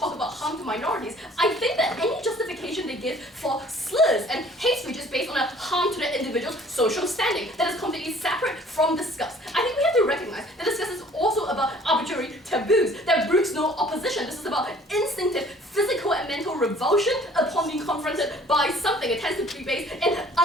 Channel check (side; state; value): both; normal; correlation 0.53